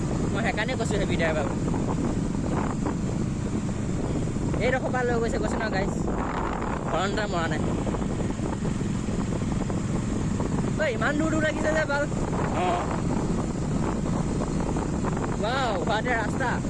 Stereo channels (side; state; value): both; identical; correlation 1.00